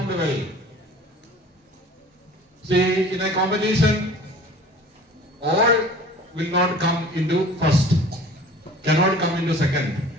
well. See, in a competition, all will not come into first, cannot come into second.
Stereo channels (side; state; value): both; normal; correlation 0.45